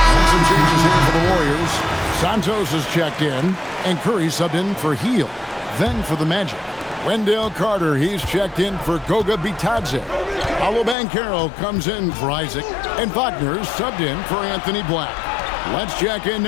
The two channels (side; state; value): right; drops out; at 11.0 s